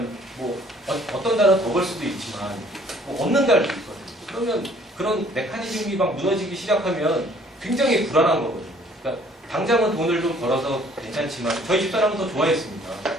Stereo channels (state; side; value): normal; both; correlation 0.58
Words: 뭐 어떤 달은 더 벌 수도 있지만 뭐 없는 달도 있거든요. 그러면 그런 메커니즘이 막 무너지기 시작하면 굉장히 불안한 거거든요. 그러니까 당장은 돈을 좀 벌어서 괜찮지만 저희 집사람은 더 좋아했습니다.